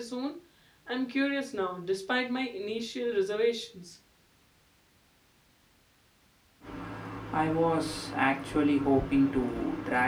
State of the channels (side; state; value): both; identical; correlation 1.00